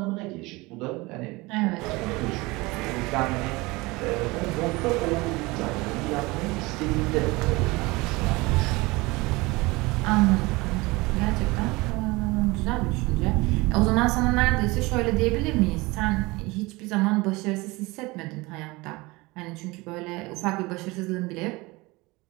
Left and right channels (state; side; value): quieter; left; 23.0 dB